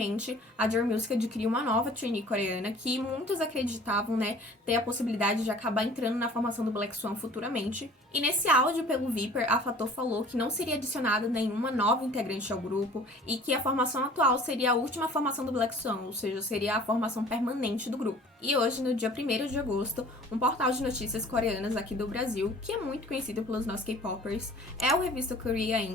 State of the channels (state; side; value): normal; both; correlation 0.48